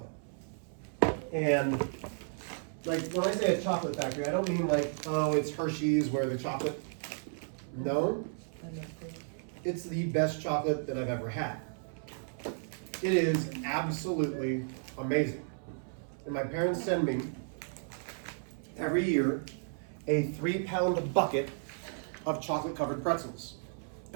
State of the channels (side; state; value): left; silent; 55 dB below the other